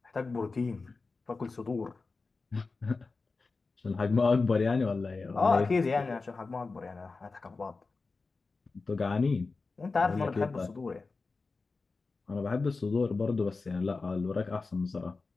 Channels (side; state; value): right; quieter; 4.0 dB